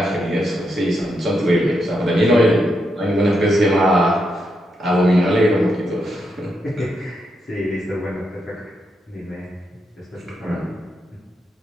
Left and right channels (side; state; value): both; normal; correlation 0.82